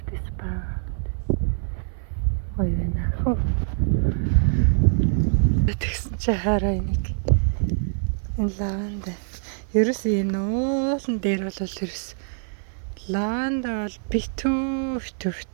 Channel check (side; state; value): left; silent; 57 dB below the other